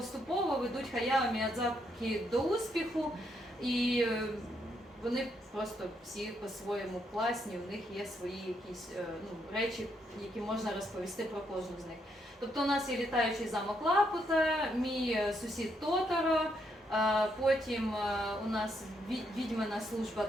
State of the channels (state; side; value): normal; both; correlation 0.76